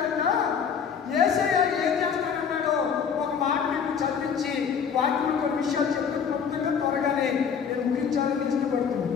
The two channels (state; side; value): quieter; right; 7.0 dB